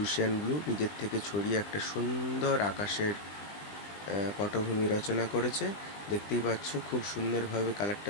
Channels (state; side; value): late; right; 20 ms